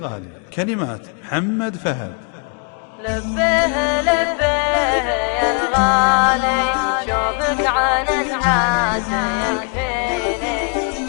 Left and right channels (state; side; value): quieter; right; 39.5 dB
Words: كلمات محمد فهد. لبيه لبيه يا الغالي، شوفك عن الناس يكفيني.